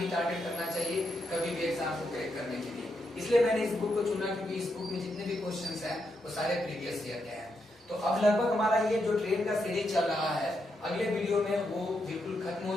टारगेट करना चाहिए कभी भी एग्जाम को क्रैक करने के लिए। इसलिए मैंने इस बुक को चुना क्योंकि इस बुक में जितने भी क्वेश्चंस हैं वो सारे प्रीवियस ईयर के हैं। तो अब लगभग हमारा ये जो ट्रेन का सीरीज चल रहा है अगले वीडियो में वो बिल्कुल खत्म हो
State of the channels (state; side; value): normal; both; correlation 0.82